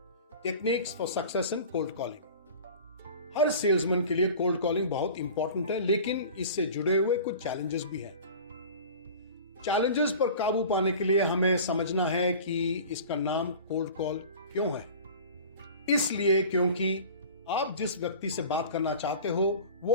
Techniques for success in cold calling. Her salesman के लिए कोल्ड कॉलिंग बहुत इंपॉर्टेंट है, लेकिन इससे जुड़े हुए कुछ चैलेंजेस भी हैं। चैलेंजेस पर काबू पाने के लिए हमें समझना है कि इसका नाम कोल्ड कॉल क्यों है। इसलिए क्योंकि आप जिस व्यक्ति से बात करना चाहते हो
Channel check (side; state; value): both; inverted; correlation -0.40